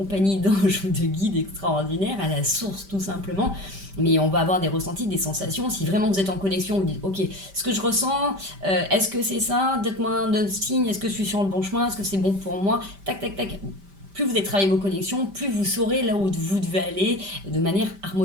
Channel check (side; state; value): left; late; 5.1 ms